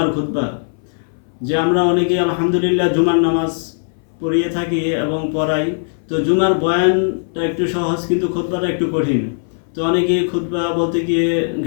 খুতবা। যে আমরা অনেকেই আলহামদুলিল্লাহ জুমার নামাজ পড়িয়ে থাকি এবং পড়াই। তো জুমার বয়ানটা একটু সহজ, কিন্তু খুতবাটা একটু কঠিন। তো অনেকেই খুতবা বলতে গিয়ে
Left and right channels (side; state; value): right; silent; 63 dB below the other